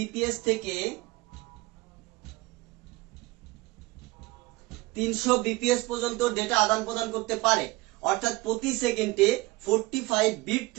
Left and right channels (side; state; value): left; quieter; 21.4 dB